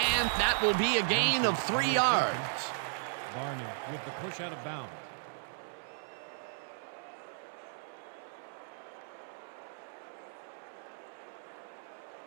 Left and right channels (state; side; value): silent; left; 54 dB below the other